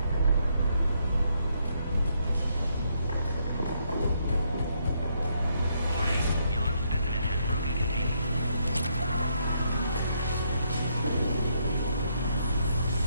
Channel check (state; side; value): inverted; both; correlation -0.74